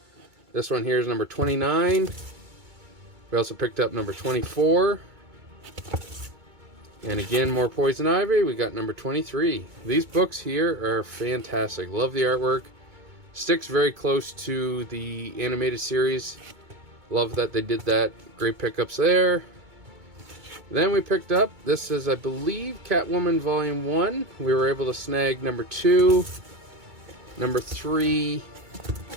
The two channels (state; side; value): late; left; 2.2 ms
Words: This one here is number 29. We also picked up number 24. And again, more Poison Ivy. We got number 23. These books here are fantastic. Love the artwork. Sticks very close to the animated series. Love that they did that. Great pickups there. Then we picked up, this is, I believe, Catwoman Volume 1. We were able to snag number 2, number 3,